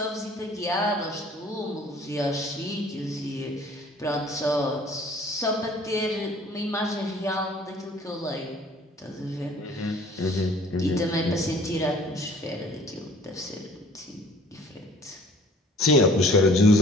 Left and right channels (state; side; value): normal; both; correlation 0.52